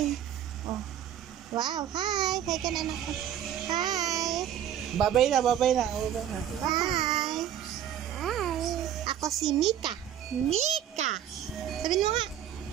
Oh. Wow, hi. Hi ka na anak ko. Hi. Babay na, babay na. Hi. Hi. Ako si Mika. Mika. Sabihin mo nga.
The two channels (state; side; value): quieter; left; 10.3 dB